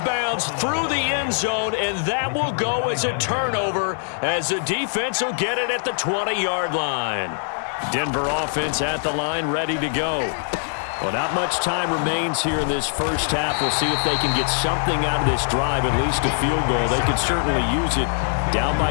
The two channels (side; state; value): right; silent; digital silence